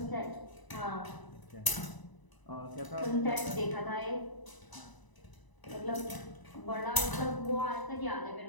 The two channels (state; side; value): late; right; 1.0 ms